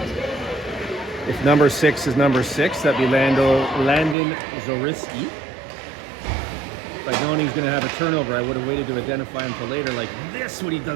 If number 6 is number 6, that'd be Landon Zoriski. If I'd known he was going to have a turnover, I would have waited to identify him for later, like this, when he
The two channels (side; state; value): left; drops out; at 4.2 s